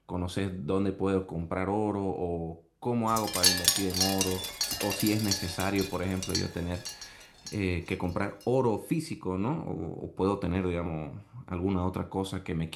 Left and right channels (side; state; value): both; identical; correlation 1.00